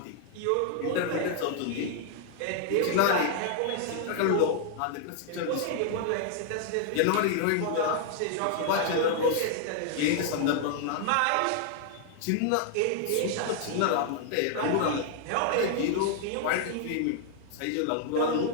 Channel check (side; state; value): both; different; correlation 0.00